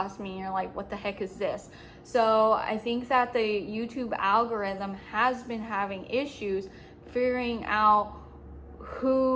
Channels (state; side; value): identical; both; correlation 1.00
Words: me and you're like, what the heck is this? So I think that the YouTube algorithm has been having issues figuring out